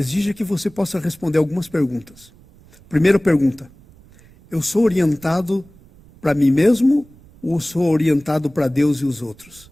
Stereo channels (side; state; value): right; noise; rumble, 26 dB below the sound